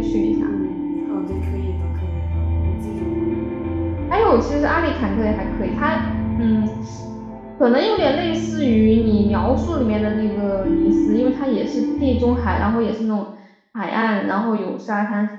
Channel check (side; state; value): both; identical; correlation 1.00